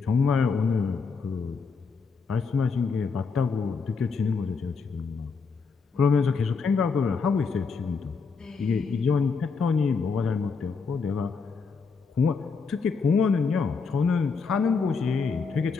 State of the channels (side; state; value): right; quieter; 5.1 dB